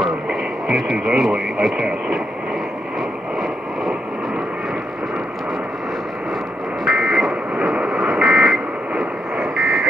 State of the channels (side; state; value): both; normal; correlation 0.81